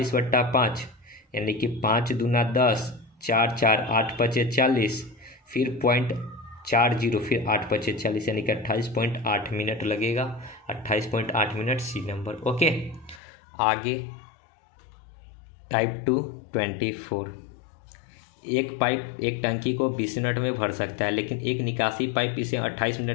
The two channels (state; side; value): drops out; right; at 13.2 s